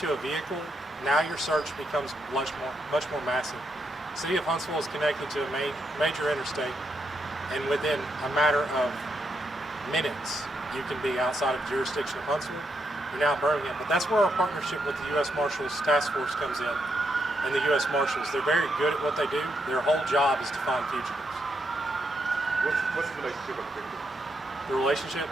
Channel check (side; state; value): both; normal; correlation 0.80